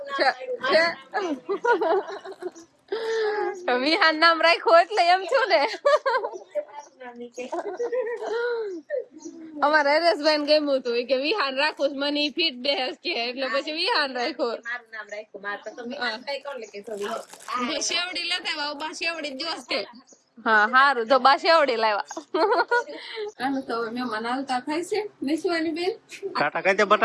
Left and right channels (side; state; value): both; identical; correlation 1.00